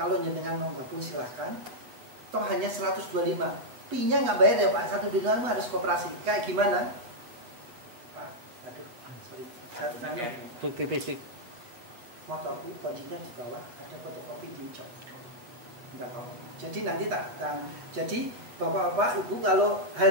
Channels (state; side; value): late; left; 8.4 ms